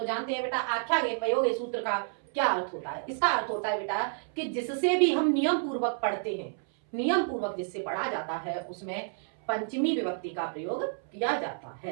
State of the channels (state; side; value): silent; left; 58 dB below the other